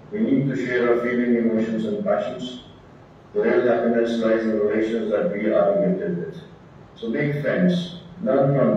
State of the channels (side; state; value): both; identical; correlation 1.00